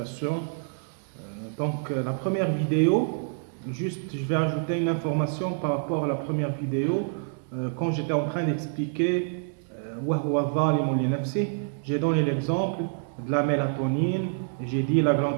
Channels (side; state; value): left; silent; digital silence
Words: La première vidéo, juste je vais ajouter une information par rapport à la première vidéo. Quand j'étais en train d'expliquer j'ai donné l'exemple de la mélatonine, j'ai dit la glande